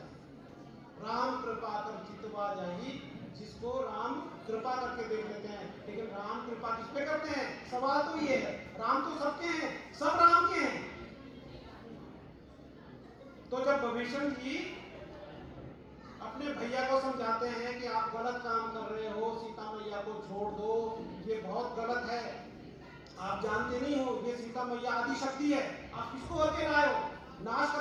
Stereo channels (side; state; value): both; identical; correlation 1.00